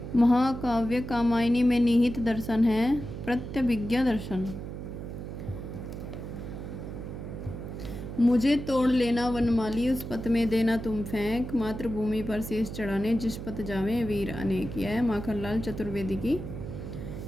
महाकाव्य कामायनी में निहित दर्शन है प्रत्यभिज्ञा दर्शन। मुझे तोड़ लेना वनमाली, उस पथ में देना तुम फेंक, मातृभूमि पर शीश चढ़ाने जिस पथ जावे वीर अनेक। यह माखनलाल चतुर्वेदी की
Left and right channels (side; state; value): right; noise; hum, 8 dB below the sound